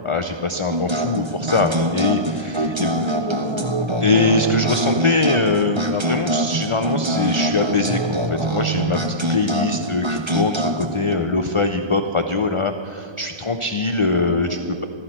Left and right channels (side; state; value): left; late; 1.3 ms